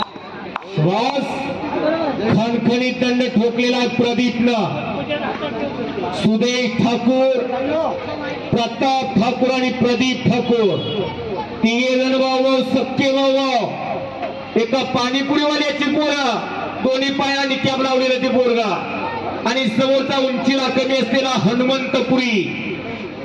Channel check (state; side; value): identical; both; correlation 1.00